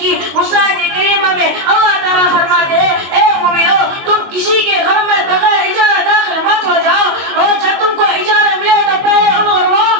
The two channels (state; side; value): late; left; 22 ms